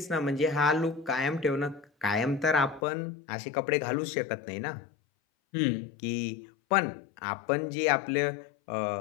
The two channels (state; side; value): drops out; right; at 2.8 s